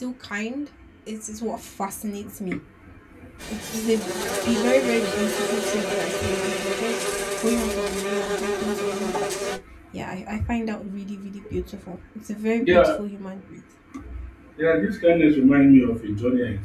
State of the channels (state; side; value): identical; both; correlation 1.00